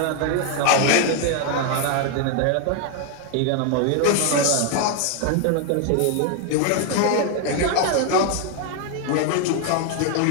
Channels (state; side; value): different; both; correlation 0.00